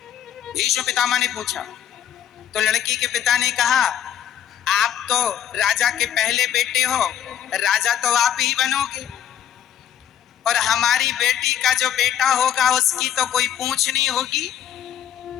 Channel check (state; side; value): quieter; right; 10.2 dB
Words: भीष्म पितामह ने पूछा। तो लड़की के पिता ने कहा, आप तो राजा के पहले बेटे हो, राजा तो आप ही बनोगे और हमारी बेटी का जो बेटा होगा उसकी तो कोई पूछ नहीं होगी।